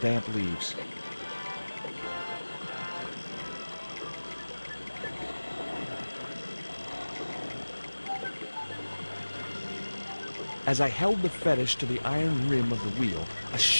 leaves. As I held the fetish to the iron rim of the wheel, a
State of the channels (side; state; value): both; inverted; correlation -1.00